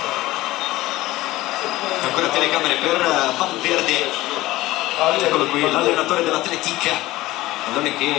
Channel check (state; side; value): quieter; right; 17.6 dB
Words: Ancora telecamere per Valverde, eccolo qui l'allenatore dell'Atletica, pallone